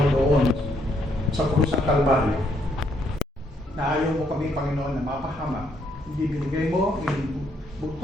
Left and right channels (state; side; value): normal; both; correlation 0.72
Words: doon sa krus ng Kalbaryo. Na ayaw mo kami, Panginoon, na mapahamak. Hindi binigay mo yung